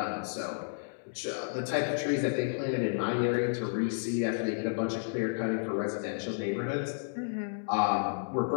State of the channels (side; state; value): right; silent; digital silence